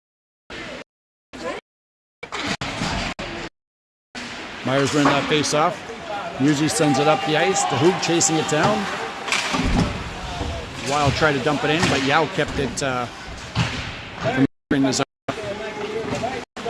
Myers ran that face off. Musi sends it up the ice. The Hoog chasing it down. Wild tried to dump it in, but Yao kept it from bringing this up.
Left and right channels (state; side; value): identical; both; correlation 1.00